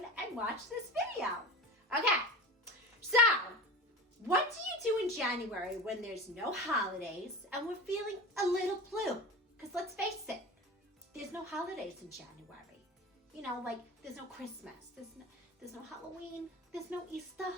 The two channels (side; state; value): both; normal; correlation 0.31